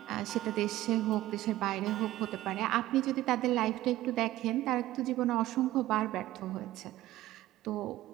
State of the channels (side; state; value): left; quieter; 15.6 dB